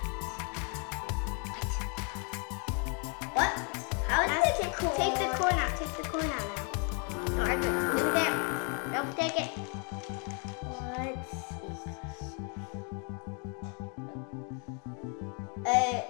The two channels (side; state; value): right; quieter; 36.8 dB